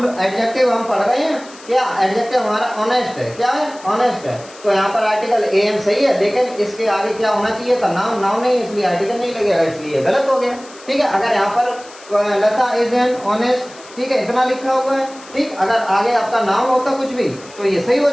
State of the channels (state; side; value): noise; left; hiss, 21 dB below the sound